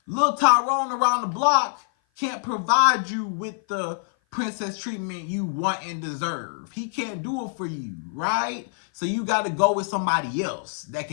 Lil Tyrone around the block can't provide you with the princess treatment you want and deserve. He can't do it for you, right? So you got to go with somebody else that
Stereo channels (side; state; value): right; silent; 56 dB below the other